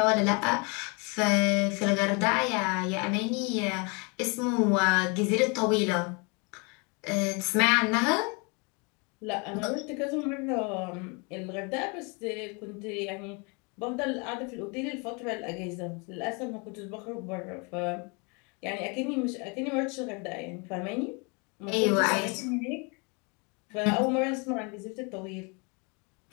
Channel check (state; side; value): quieter; right; 31.9 dB